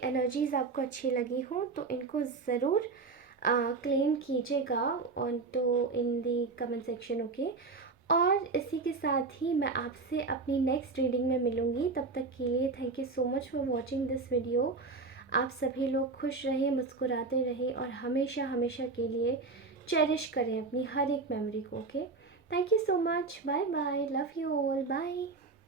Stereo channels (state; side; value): quieter; left; 4.2 dB